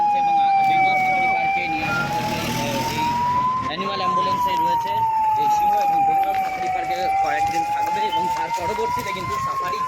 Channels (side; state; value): both; identical; correlation 1.00